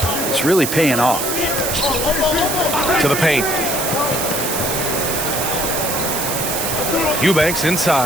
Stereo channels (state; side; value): noise; right; hiss, 2 dB below the sound